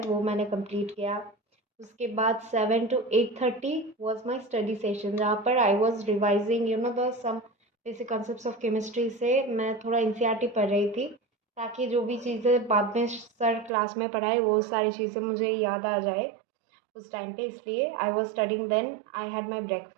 वो मैंने कंप्लीट किया। उसके बाद 7 to 8:30 was my study session, जहाँ पर I was revising the some basic concepts of chemistry से मैं थोड़ा एनसीईआरटी पढ़ रही थी, ताकि जो भी चीज़ें बाद में सर क्लास में पढ़ाए वो सारी चीज़ें मुझे याद आ जाए उस टाइम पे। इसलिए I was studying, then I had my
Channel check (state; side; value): drops out; left; at 13.7 s